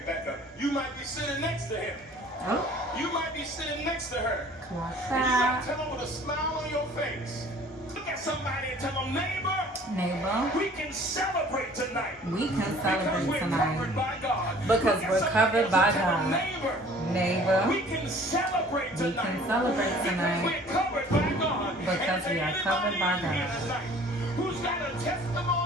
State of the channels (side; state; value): both; normal; correlation 0.51